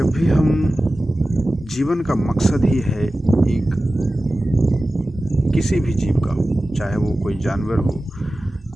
भी हम जीवन का मकसद ही है एक किसी भी जीव का हो, चाहे वो कोई जानवर हो,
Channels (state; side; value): normal; both; correlation 0.95